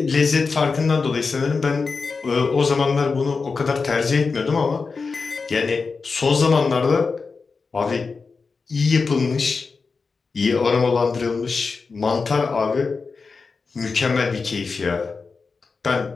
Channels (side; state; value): right; quieter; 4.6 dB